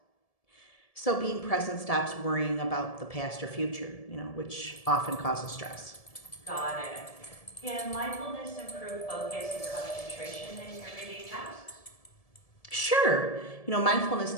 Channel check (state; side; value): late; right; 1.7 ms